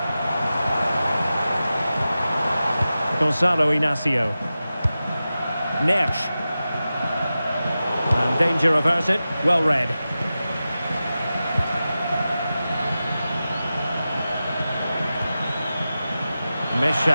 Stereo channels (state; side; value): inverted; both; correlation -0.94